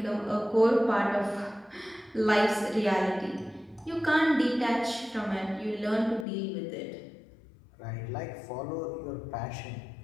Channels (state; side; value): drops out; right; at 6.2 s